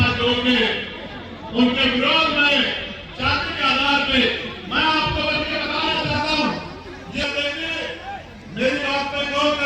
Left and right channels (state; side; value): identical; both; correlation 1.00